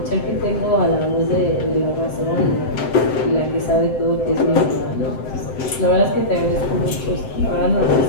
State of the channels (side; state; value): right; late; 7.8 ms